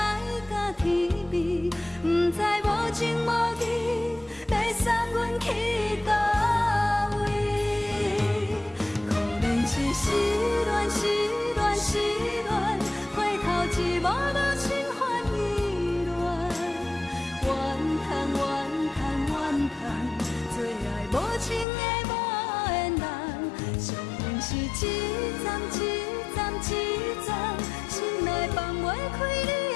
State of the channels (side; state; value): right; drops out; at 21.7 s